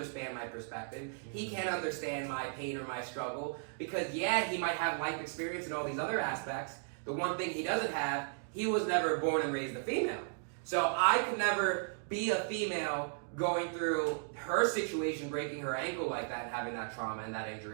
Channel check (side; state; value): left; silent; digital silence